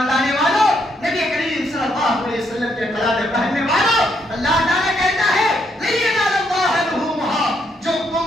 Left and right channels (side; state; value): both; normal; correlation 0.75